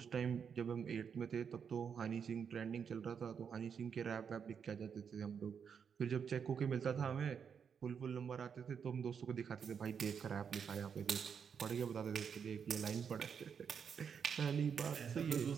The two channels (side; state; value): left; quieter; 7.0 dB